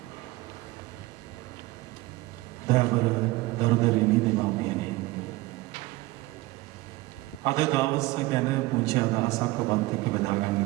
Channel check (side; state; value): left; quieter; 20.0 dB